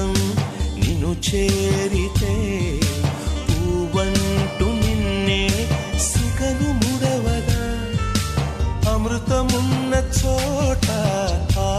నిన్ను చేరితే పూవంటూ నిన్నే సిగను ముడవదా అమృతమున్న చోట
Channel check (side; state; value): both; identical; correlation 1.00